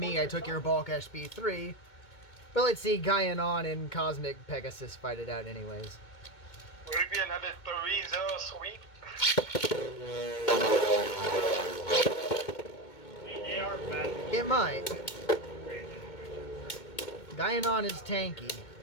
I Took Your Balkesh B3. But let's see Gaianon and Cosmic Pegasus fight it out anyways. Would it be another 3-0 sweep? They are bad. It might. Gaianon is tanky.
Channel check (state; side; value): late; right; 2.2 ms